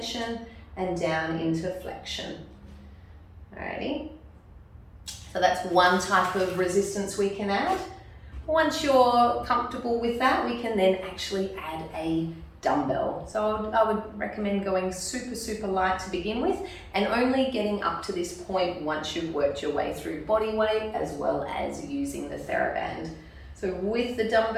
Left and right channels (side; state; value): both; identical; correlation 1.00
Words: and down into flexion. Alrighty. So that's one type of resistance we can add. Once you're comfortable with that, we can then actually add a dumbbell. So I would recommend going super, super light to begin with and only getting up to this point once you've worked your way through body weight as well as using the TheraBand. So with the